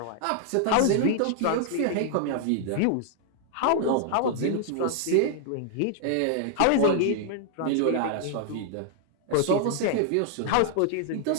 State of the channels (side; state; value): both; different; correlation 0.00